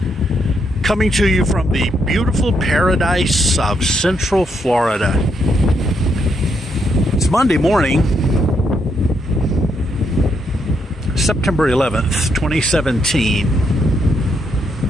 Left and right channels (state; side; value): normal; both; correlation 0.77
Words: coming to you from the beautiful paradise of Central Florida. It's Monday morning, September 11th, 2017.